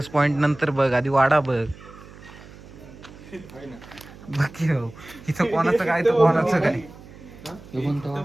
पॉइंट नंतर बघ आधी वाडा बघ. बाकी हो इथं कोणाचं काय तर कोणाचं काय.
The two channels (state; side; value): noise; right; hum, 19 dB below the sound